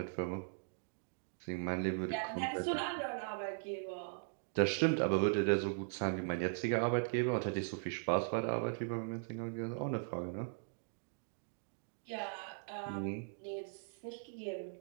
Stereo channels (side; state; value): left; silent; digital silence